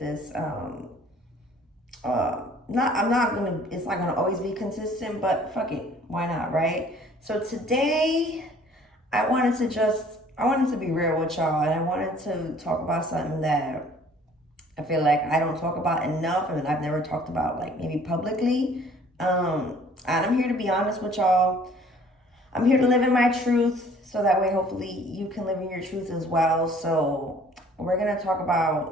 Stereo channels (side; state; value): both; normal; correlation 0.54